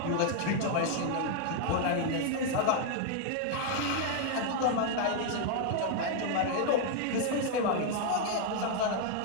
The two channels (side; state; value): both; different; correlation 0.00